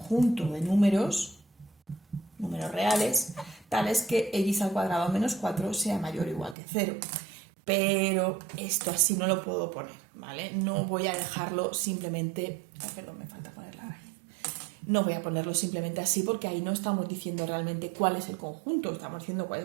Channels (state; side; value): drops out; left; at 6.6 s